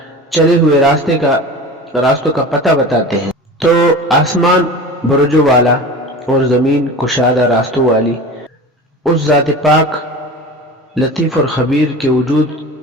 چلے ہوئے راستوں کا پتہ بتاتے ہیں، تو آسمان برجوں والا اور زمین کشادہ راستوں والی اس ذات پاک لطیف اور خبیر کے وجود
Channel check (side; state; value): both; normal; correlation 0.34